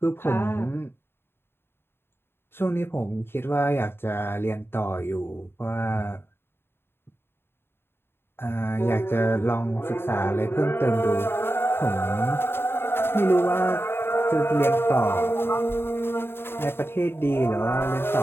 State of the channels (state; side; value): late; right; 0.11 ms